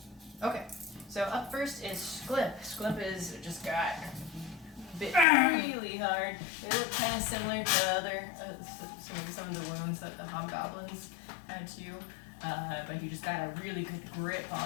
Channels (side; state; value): right; drops out; at 5.2 s